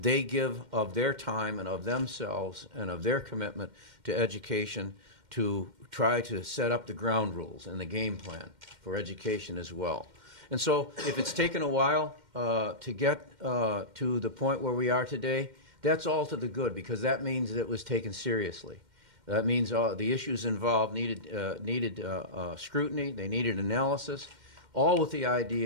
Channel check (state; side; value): late; left; 2.1 ms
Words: give of their time and of themselves and of their commitment to education to try to set up the ground rules and the game plan for education as well. And so if it's taken a while to get to the point where we are today, that's all to the good, because that means that it was taken seriously. That means the issues involved needed scrutiny, they needed analysis, all with the